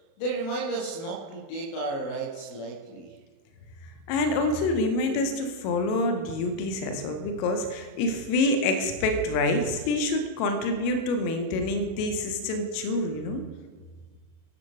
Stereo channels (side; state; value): right; late; 37 ms